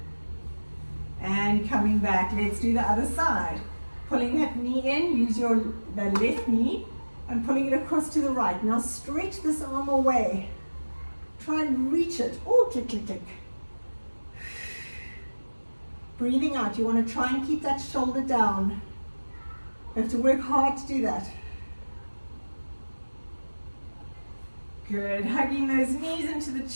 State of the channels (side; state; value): both; inverted; correlation -1.00